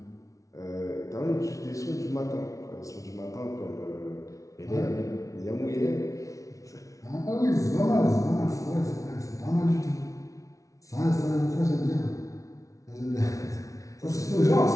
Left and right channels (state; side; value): late; right; 0.16 ms